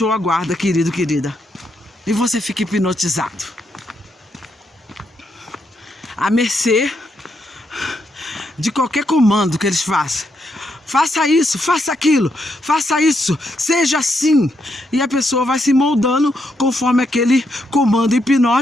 a guarda, querido, querida, e você fica hipnotizado, à mercê de qualquer comando que eles façam. Faça isso, faça aquilo, faça isso, seja assim. E a pessoa vai se moldando conforme aquele comando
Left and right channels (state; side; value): normal; both; correlation 0.79